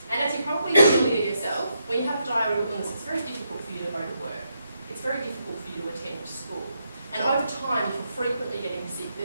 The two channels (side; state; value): both; inverted; correlation -0.80